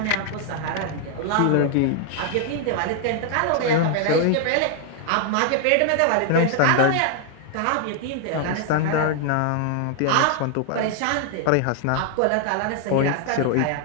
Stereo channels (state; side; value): different; both; correlation 0.00